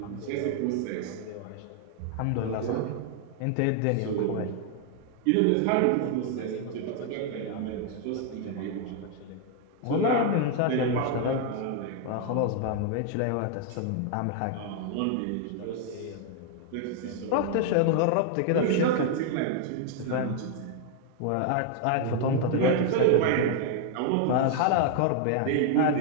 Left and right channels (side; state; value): both; different; correlation 0.00